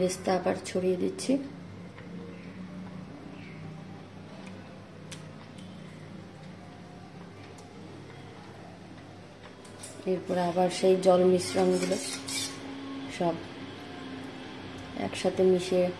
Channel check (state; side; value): identical; both; correlation 1.00